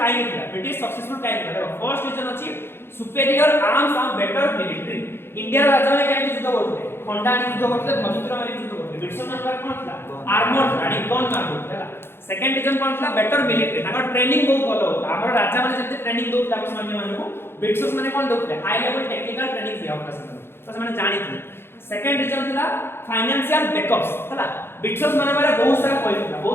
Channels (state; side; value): late; right; 0.11 ms